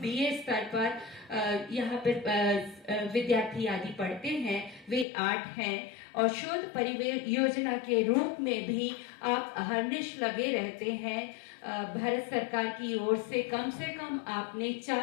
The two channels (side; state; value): right; drops out; at 5.1 s